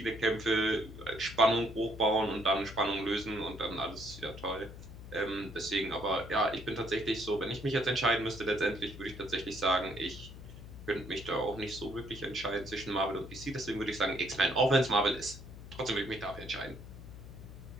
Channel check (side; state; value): left; noise; hum, 14 dB below the sound